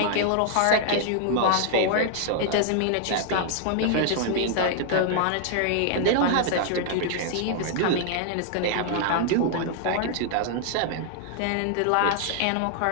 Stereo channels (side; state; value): both; different; correlation 0.00